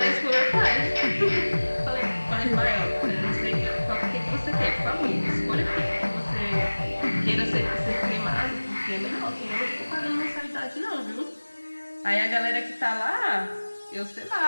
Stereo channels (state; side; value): inverted; both; correlation -1.00